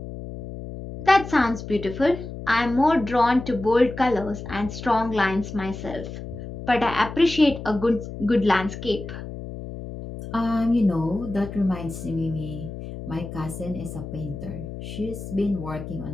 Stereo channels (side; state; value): left; noise; hum, 10 dB below the sound